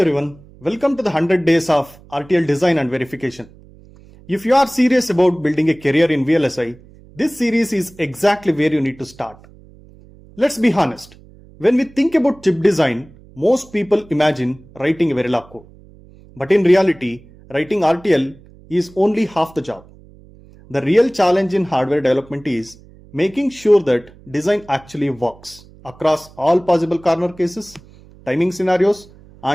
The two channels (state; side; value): noise; right; hum, 24 dB below the sound